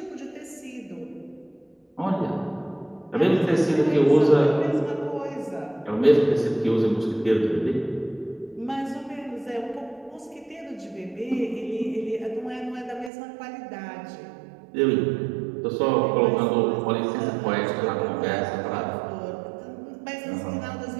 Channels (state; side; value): drops out; left; at 13.1 s